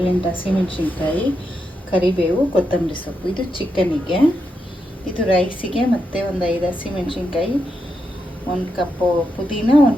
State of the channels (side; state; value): both; normal; correlation 0.84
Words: ಹಸಿಮೆಣಸಿನ್ಕಾಯಿ, ಕರಿಬೇವು, ಕೊತ್ತಂಬರಿ ಸೊಪ್ಪು. ಇದು ಚಿಕನಿಗೆ. ಇದು ರೈಸಿಗೆ. ಮತ್ತು ಒಂದು 5 ಹಸಿಮೆಣಸಿನ್ಕಾಯಿ, 1 ಕಪ್ಪು ಪುದೀನ,